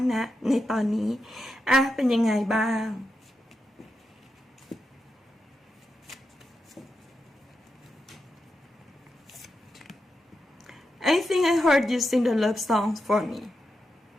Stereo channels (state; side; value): normal; both; correlation 0.87